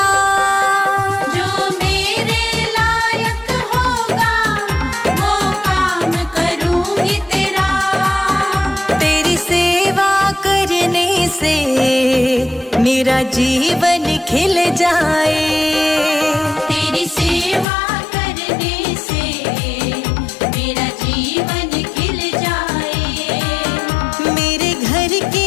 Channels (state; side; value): drops out; right; at 17.7 s